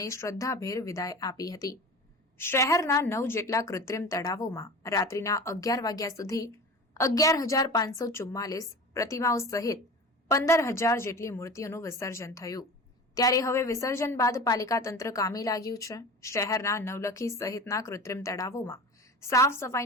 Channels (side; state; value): both; normal; correlation 0.34